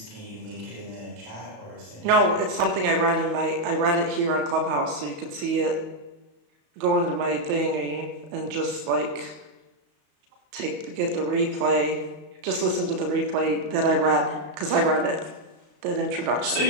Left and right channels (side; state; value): left; late; 35 ms